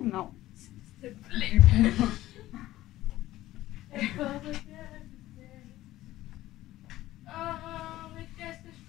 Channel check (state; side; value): quieter; right; 15.5 dB